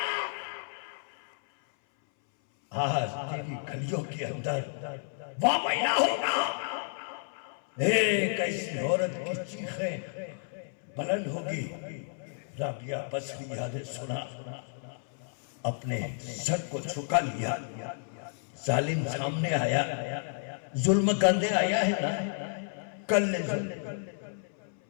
आज तेरी गलियों के अंदर वह महीना होगा। एक ऐसी औरत की चीखें बुलंद होगी। राबिया बसरिया ने सुना, अपने सर को झुका लिया। जालिम सामने आया, जुल्म करने आया है ना, कर ले जुल्म।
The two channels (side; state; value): right; silent; 57 dB below the other